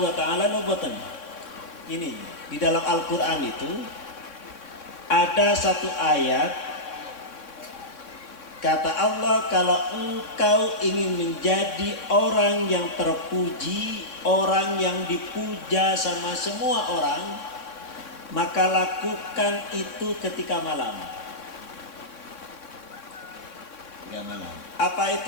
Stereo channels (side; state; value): right; late; 3.6 ms